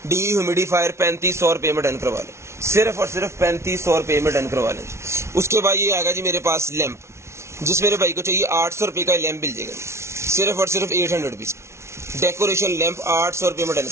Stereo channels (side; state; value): left; late; 0.13 ms